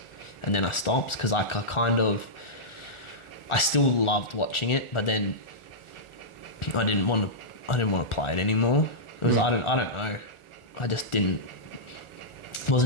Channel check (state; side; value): late; right; 1.4 ms